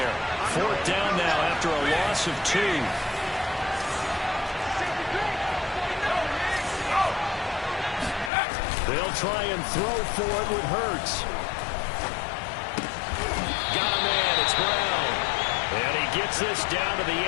4th down now after a loss of 2. They'll try and throw for it with Hurts. Got a man, it's Brown. And he gets this down to the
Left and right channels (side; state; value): right; drops out; at 8.3 s